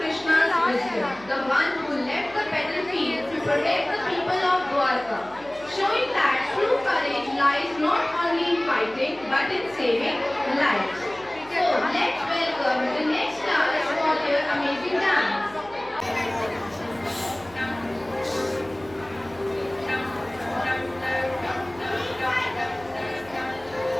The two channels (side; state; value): right; noise; hum, 23 dB below the sound